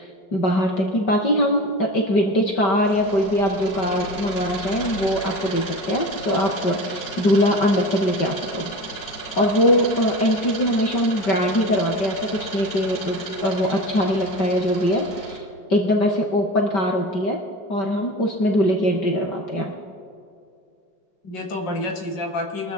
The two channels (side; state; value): right; late; 5.2 ms